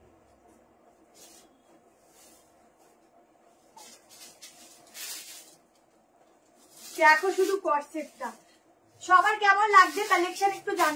দেখো শুধু কোট সেটটা, সবার কেমন লাগছে কালেকশন একটু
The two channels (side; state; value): both; identical; correlation 1.00